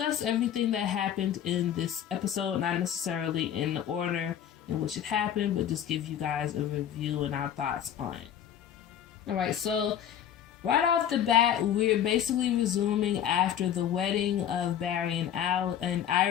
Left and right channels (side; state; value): right; quieter; 9.8 dB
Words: everything that happened in this episode, not necessarily in the order in which it happened, but just give you guys a review and our thoughts on it. Alright, so right off the bat, we're basically resuming after the wedding of Barry and